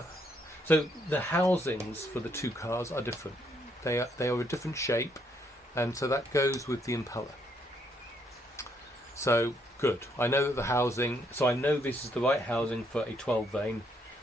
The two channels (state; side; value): normal; both; correlation 0.72